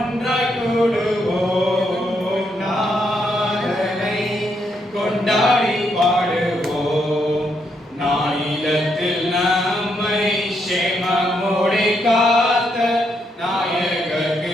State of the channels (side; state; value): both; normal; correlation 0.77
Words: கூடுவோம், நாதனை கொண்டாடி பாடுவோம். நானிலத்தில் நம்மை சேமமோடு காத்த நாயகருக்கு